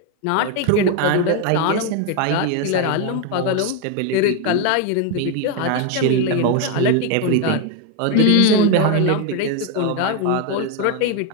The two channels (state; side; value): different; both; correlation 0.01